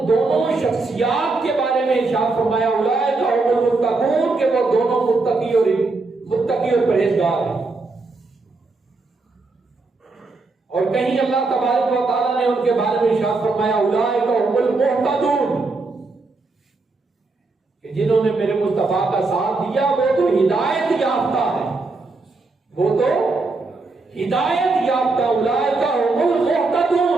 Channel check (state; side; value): quieter; left; 3.6 dB